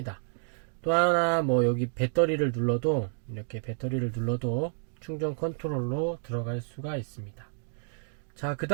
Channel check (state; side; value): silent; left; digital silence